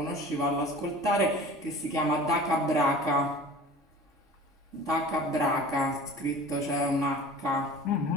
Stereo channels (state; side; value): normal; both; correlation 0.41